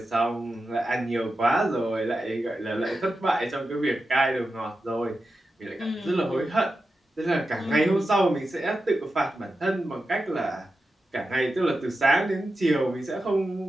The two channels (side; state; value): both; normal; correlation 0.91